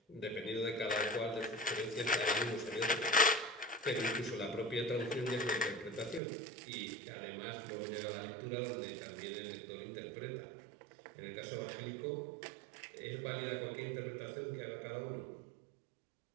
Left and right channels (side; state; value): left; drops out; at 6.2 s